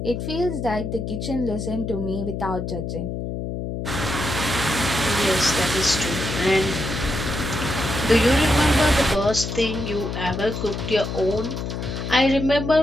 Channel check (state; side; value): noise; left; hum, 4 dB below the sound